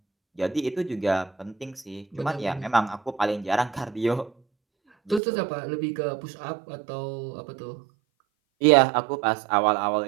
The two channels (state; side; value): drops out; left; at 5.2 s